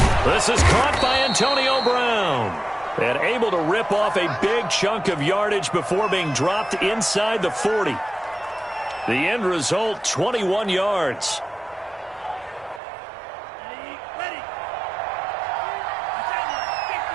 This is caught by Antonio Brown. And able to rip off a big chunk of yardage before being dropped inside the 40. The end result, 21 yards.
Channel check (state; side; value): drops out; left; at 12.8 s